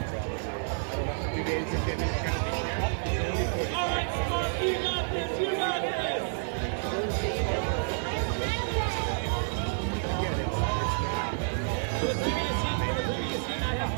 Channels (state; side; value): silent; left; 58 dB below the other